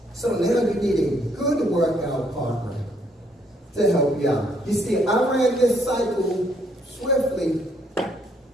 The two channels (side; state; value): both; normal; correlation 0.69